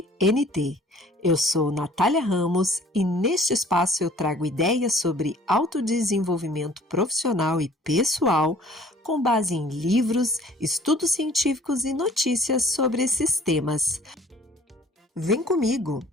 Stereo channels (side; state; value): both; normal; correlation 0.53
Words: NT. Eu sou Natália Ramos e neste espaço eu trago ideias sobre autodesenvolvimento profissional e pessoal com base em livros, estudos científicos e notícias sobre esses temas. Vem comigo,